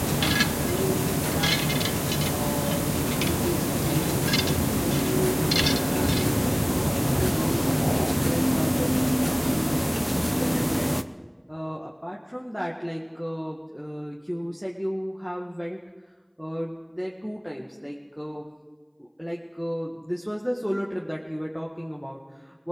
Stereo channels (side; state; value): both; identical; correlation 1.00